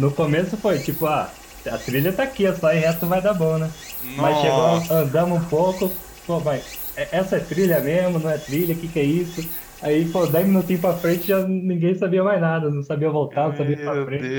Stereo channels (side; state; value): both; identical; correlation 1.00